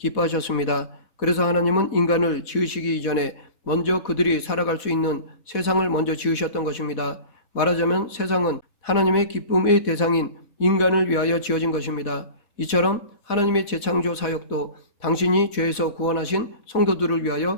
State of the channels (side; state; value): right; late; 4.1 ms